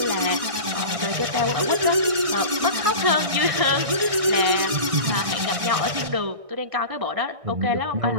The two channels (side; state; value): left; late; 1.6 ms